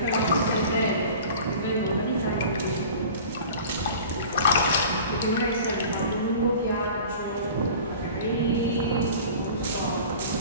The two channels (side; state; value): both; inverted; correlation -0.41